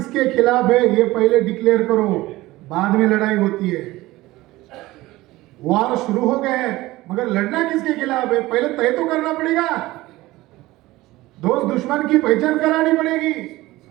खिलाफ है ये पहले डिक्लेयर करो, बाद में लड़ाई होती है। वार शुरू हो गए हैं, मगर लड़ना किसके खिलाफ है पहले तय तो करना पड़ेगा। दोस्त दुश्मन की पहचान करानी पड़ेगी।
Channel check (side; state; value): left; quieter; 18.4 dB